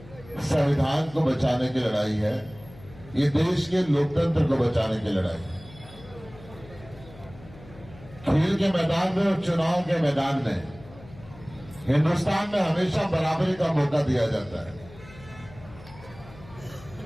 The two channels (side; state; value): left; noise; hum, 20 dB below the sound